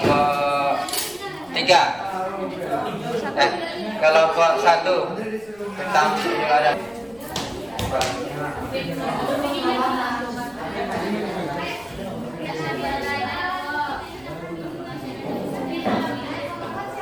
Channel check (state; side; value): noise; left; rumble, 27 dB below the sound